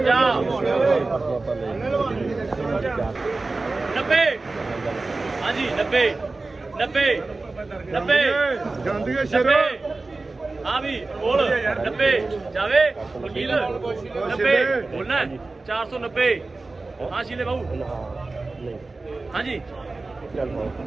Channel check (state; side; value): quieter; left; 3.5 dB